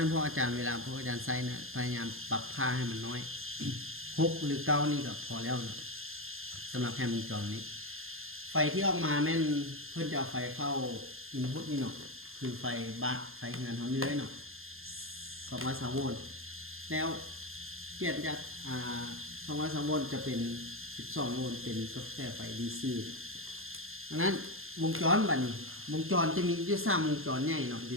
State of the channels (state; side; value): late; left; 0.60 ms